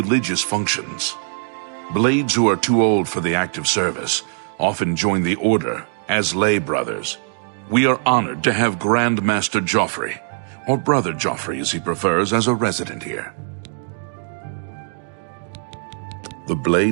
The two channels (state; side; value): silent; left; digital silence